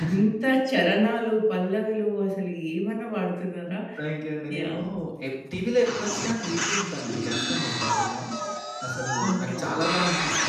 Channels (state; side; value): identical; both; correlation 1.00